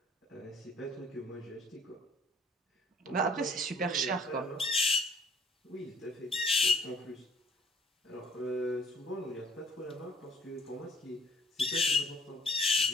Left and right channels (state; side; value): normal; both; correlation 0.58